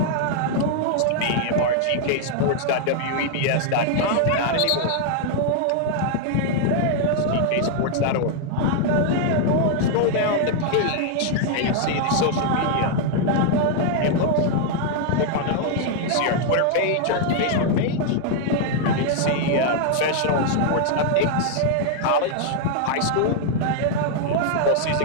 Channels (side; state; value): both; different; correlation 0.00